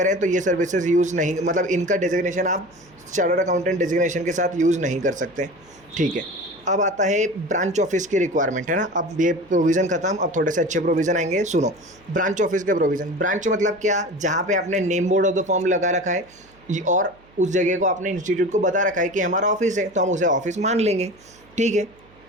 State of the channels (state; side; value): noise; right; hum, 28 dB below the sound